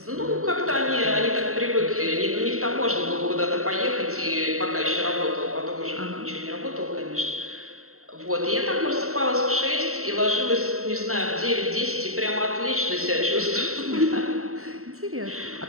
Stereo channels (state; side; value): late; left; 0.63 ms